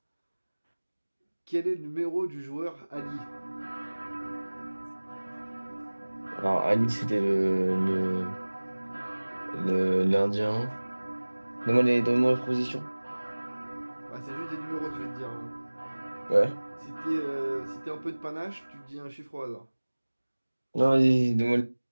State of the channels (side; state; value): both; inverted; correlation -1.00